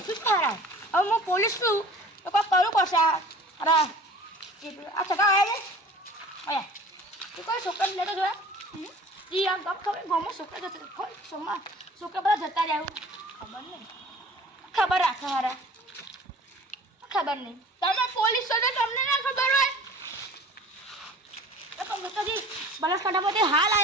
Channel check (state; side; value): normal; both; correlation 0.45